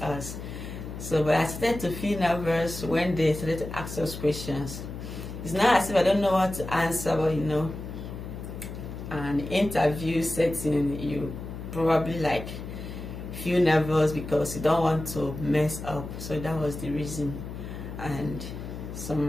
us. So, but I started to feel nervous when they started to ask us questions. It's not as if I don't know what to answer, but you know, an interview setting, you probably like feel nervous because you don't want to mess up. So that was the reason. And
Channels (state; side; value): noise; left; hum, 9 dB below the sound